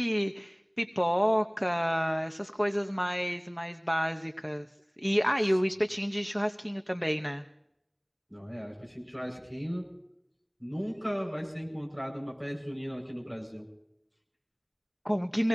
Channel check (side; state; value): both; identical; correlation 1.00